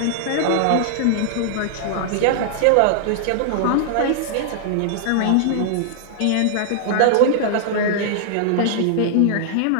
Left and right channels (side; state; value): both; different; correlation -0.01